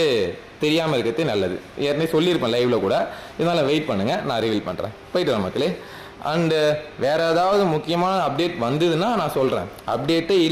தெரியாமல் இருக்கிறது நல்லது. ஏற்கனவே சொல்லியிருப்பேன் லைவில் கூட, இதனால் வெயிட் பண்ணுங்கள், நான் ரிவீல் பண்ணுறேன். போயிட்டு வரேன் மக்களே. அண்டு வேறு ஏதாவது முக்கியமான அப்டேட் வந்ததுன்னா நான் சொல்கிறேன். அப்டேட்டே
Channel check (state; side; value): identical; both; correlation 1.00